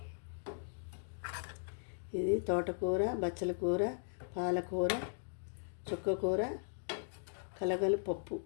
ఇది తోటకూర, బచ్చల కూర, పాలకూర, చుక్కకూర, కలగల పప్పు,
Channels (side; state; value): right; silent; digital silence